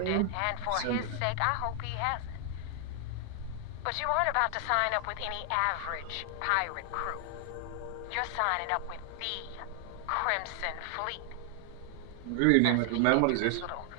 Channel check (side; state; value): both; different; correlation 0.00